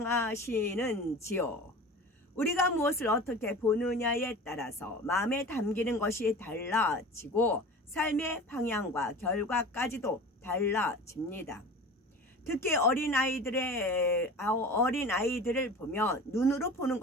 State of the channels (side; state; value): both; normal; correlation 0.36